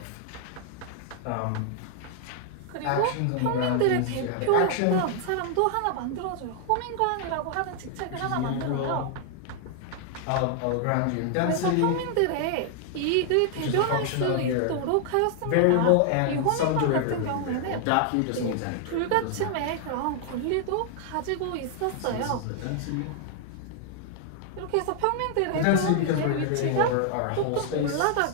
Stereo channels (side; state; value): both; different; correlation 0.00